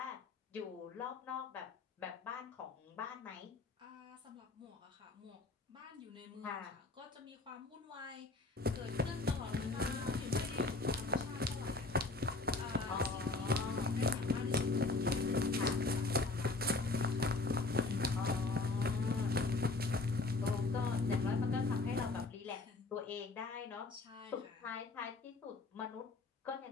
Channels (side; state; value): right; quieter; 3.3 dB